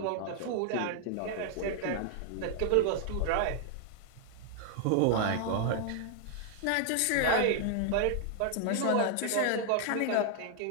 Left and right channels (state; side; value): different; both; correlation 0.00